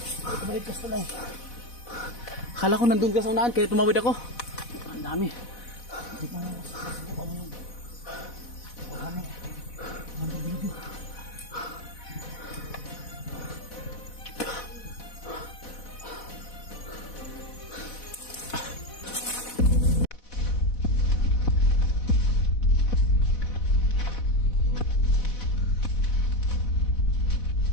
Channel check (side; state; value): right; late; 4.1 ms